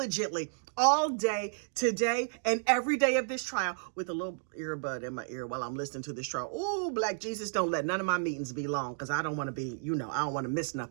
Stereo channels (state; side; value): silent; left; digital silence